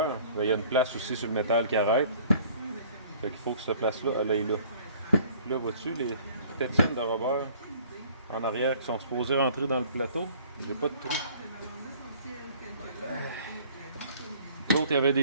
Il y a une place aussi sur le métal qui arrête. Fait qu'il faut que cette place-là, elle aille là. Là, vois-tu les tétines de robeur en arrière qui sont supposées rentrer dans le plateau? J'ai pas de trou. L'autre, il y avait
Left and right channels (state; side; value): inverted; both; correlation -0.54